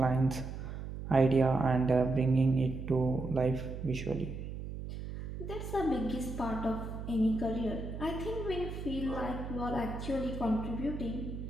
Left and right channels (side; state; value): right; noise; hum, 8 dB below the sound